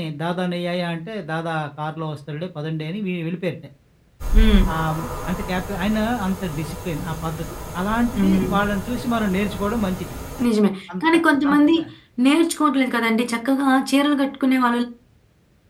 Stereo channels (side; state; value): both; identical; correlation 1.00